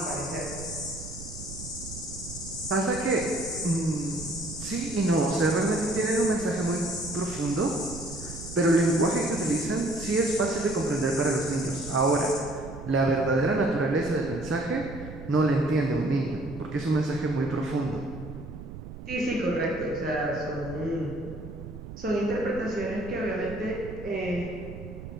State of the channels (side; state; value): right; noise; rumble, 12 dB below the sound